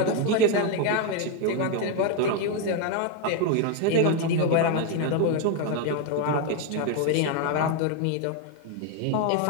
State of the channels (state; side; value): different; both; correlation 0.01